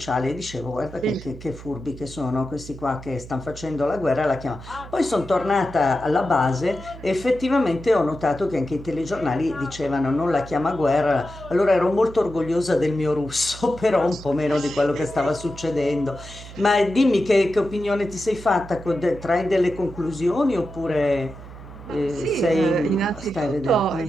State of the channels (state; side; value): noise; right; hum, 15 dB below the sound